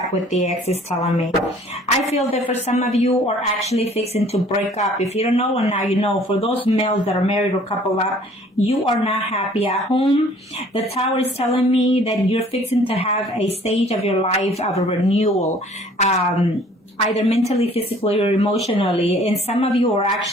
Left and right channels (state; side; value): normal; both; correlation 0.54